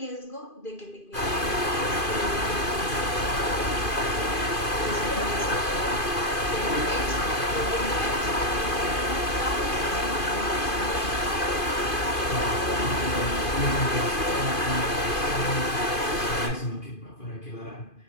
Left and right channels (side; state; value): right; late; 2.5 ms